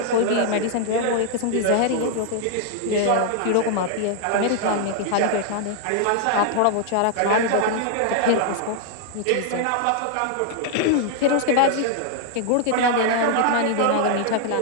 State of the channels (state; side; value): different; both; correlation -0.01